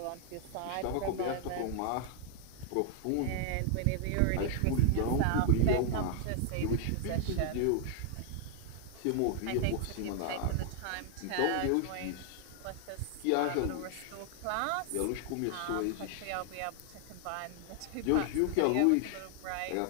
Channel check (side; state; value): both; different; correlation 0.00